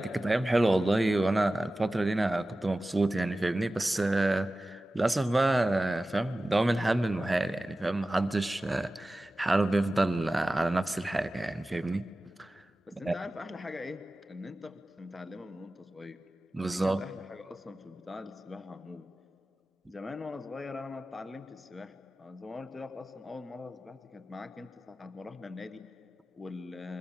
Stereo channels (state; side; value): normal; both; correlation 0.96